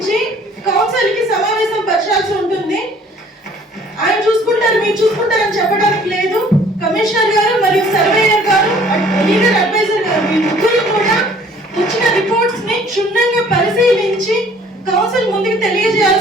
కౌన్సిల్ కి సమావేశం పరచాల్సి ఉంటుంది. ఆయన చూసుకుంటారు, మీరు చూసుకుంటారని చెప్పడానికి లేదు. కమిషనర్ గారు మరియు సర్వేయర్ గారు, లీగల్ అడ్వైజర్ గారు మీ ముగ్గురు కూడా వచ్చిన రిపోర్ట్స్ ని క్షుణ్ణంగా పరిశీలించి కౌన్సిల్ ముందుకు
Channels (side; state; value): both; normal; correlation 0.56